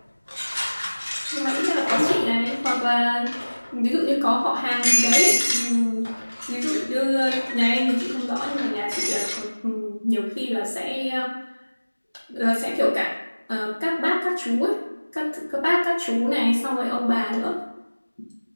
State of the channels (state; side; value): inverted; both; correlation -1.00